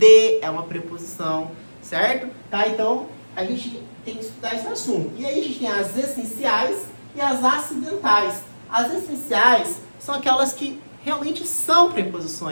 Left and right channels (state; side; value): inverted; both; correlation -1.00